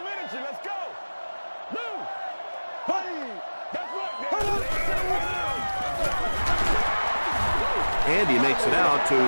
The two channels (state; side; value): inverted; both; correlation -1.00